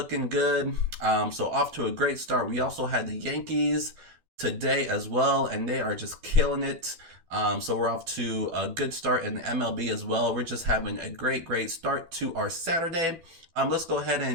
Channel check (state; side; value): late; left; 12 ms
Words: good. So off to a great start. We also had the Yankees today as well, and they are just killing it. So we're off to a good start in the MLB as well. We're just having a great, great start to our Saturday. Let's go ahead